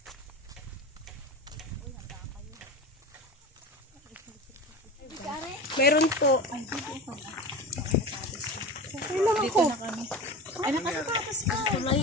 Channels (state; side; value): normal; both; correlation 0.30